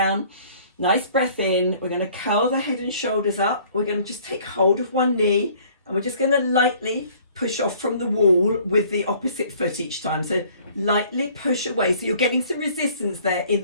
nice breath in. We're going to curl the head and shoulders up. We're going to just take hold of one knee and we're just going to lightly push off from the wall with the opposite foot each time. So lightly push away. So you're getting some resistance there in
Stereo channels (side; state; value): both; inverted; correlation -0.56